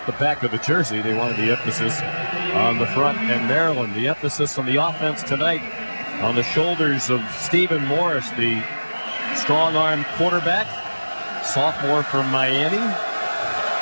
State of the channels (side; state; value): both; inverted; correlation -1.00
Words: the back of the jersey. They wanted the emphasis on the front. And Maryland, the emphasis on the offense tonight on the shoulders of Stephen Morris, the strong-arm quarterback, sophomore from Miami.